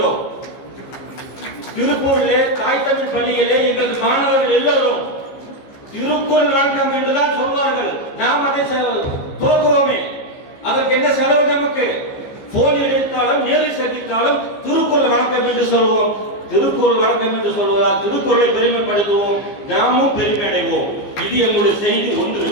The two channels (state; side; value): late; right; 15 ms